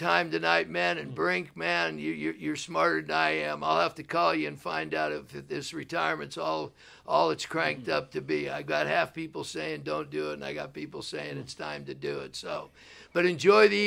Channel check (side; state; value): both; identical; correlation 1.00